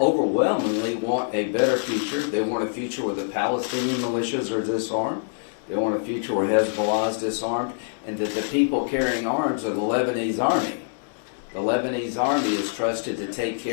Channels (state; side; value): silent; right; digital silence